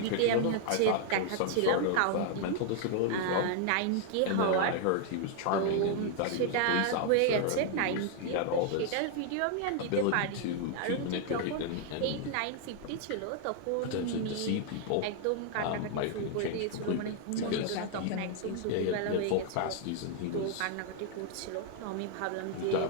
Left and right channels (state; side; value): different; both; correlation 0.00